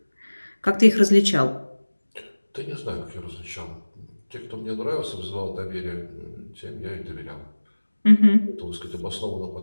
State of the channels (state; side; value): inverted; both; correlation -1.00